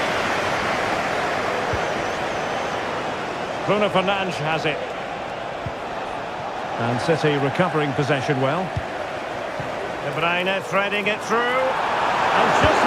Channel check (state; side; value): identical; both; correlation 1.00